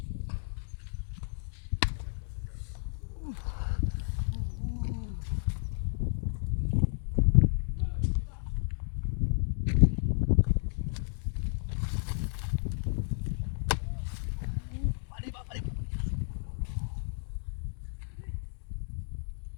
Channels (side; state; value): right; silent; digital silence